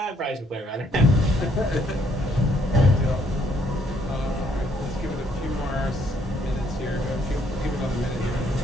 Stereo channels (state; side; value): normal; both; correlation 0.68